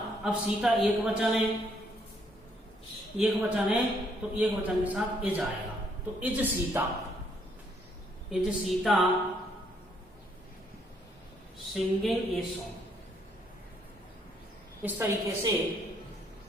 अब सीता एक वचन है, एक वचन है तो एक वचन के साथ इज आएगा, तो is Sita, is Sita singing a song. इस तरीके से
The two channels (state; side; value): normal; both; correlation 0.69